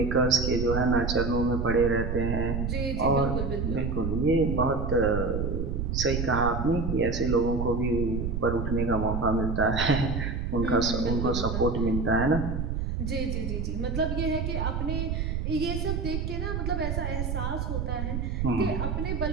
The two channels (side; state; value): right; noise; rumble, 2 dB below the sound